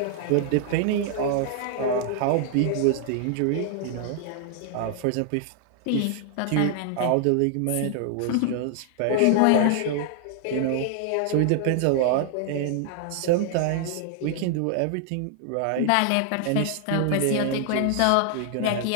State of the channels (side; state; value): both; different; correlation 0.00